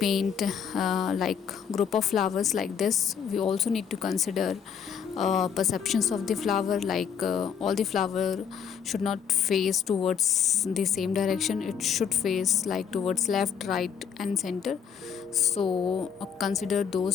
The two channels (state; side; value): quieter; right; 7.5 dB